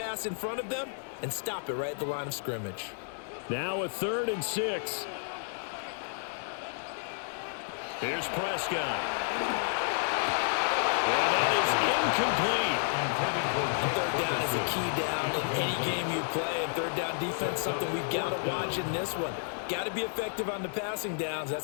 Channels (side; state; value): right; silent; digital silence